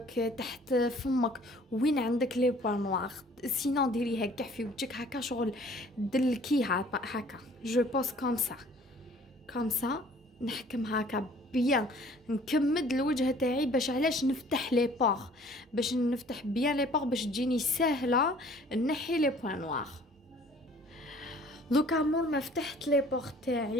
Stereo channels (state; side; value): normal; both; correlation 0.54